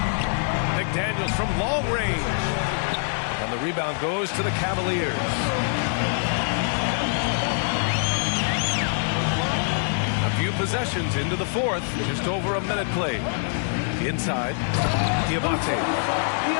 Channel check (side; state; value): right; silent; digital silence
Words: McDaniels from long range. And the rebound goes to the Cavaliers. A few possessions into the fourth. Just over a minute played. Inside. Diabate.